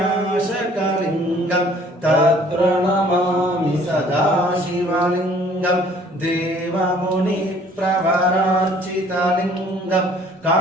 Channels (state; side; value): normal; both; correlation 0.56